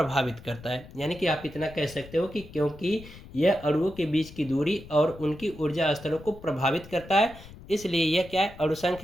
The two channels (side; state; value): left; noise; rumble, 18 dB below the sound